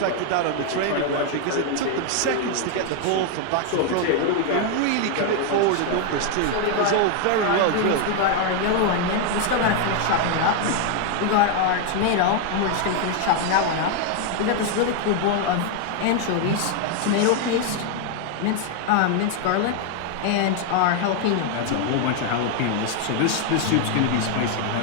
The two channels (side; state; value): both; different; correlation 0.01